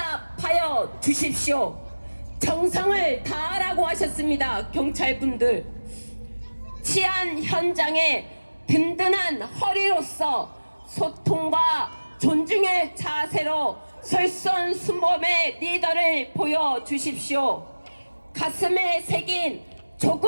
주십시오. 정성을 다하라고 하셨습니다. 경찰분들, 치안 현장에 든든한 허리로서 소통과 존중의 자세로 솔선수범의 리더를 보여주십시오. 가슴에 새긴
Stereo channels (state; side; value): inverted; both; correlation -1.00